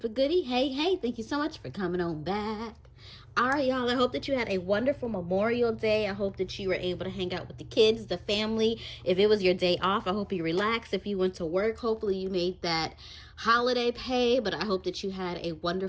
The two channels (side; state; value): both; identical; correlation 1.00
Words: goodie, hey, thank you so much for coming on back. All right, y'all, I hope that you had a wonderful Memorial Day. I hope that you were able to hang out with the kids, the family. If it was your day off, I hope you relaxed. If you went to work, hopefully you made that holiday pay, but I hope that you had a